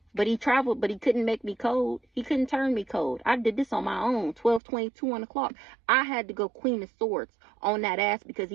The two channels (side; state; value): left; drops out; at 4.6 s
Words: But he traveled, but he couldn't make me cold. He couldn't turn me cold. I did this on my own. 12:22 on the clock. I had to go Queen of Swords on that ass because